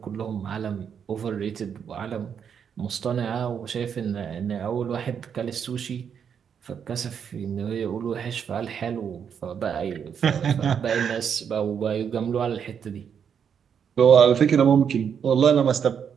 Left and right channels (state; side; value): quieter; left; 7.6 dB